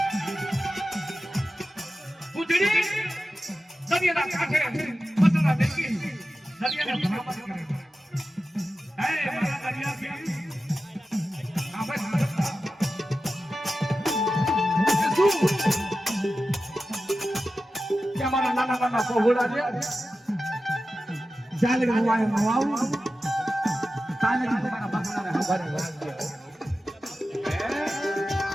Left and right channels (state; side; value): normal; both; correlation 0.93